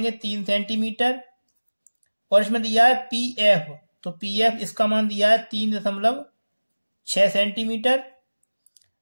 3 सेंटीमीटर। और इसमें दिया है PF। तो PF इसका मान दिया है 3.6 सेंटीमीटर।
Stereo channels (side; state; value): both; inverted; correlation -1.00